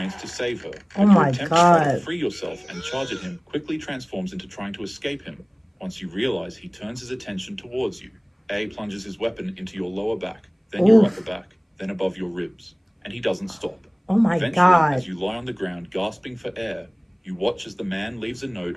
to save her. Oh But my your attempt to try to God. free yourself and charge at him quickly transforms into trying to escape him. Once you realize he turns his attention towards you, A plunges his weapon into your lower back, then your Oof. upper back, then above your ribs, and he doesn't stop. Oh my Eventually, God. as you lie on the ground gasping for air, you watch as the man leaves a note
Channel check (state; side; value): identical; both; correlation 1.00